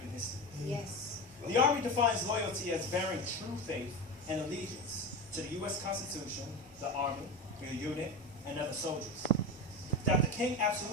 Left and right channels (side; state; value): both; normal; correlation 0.23